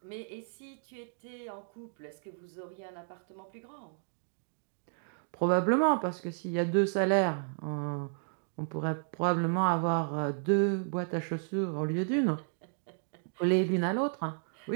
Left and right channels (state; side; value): silent; left; digital silence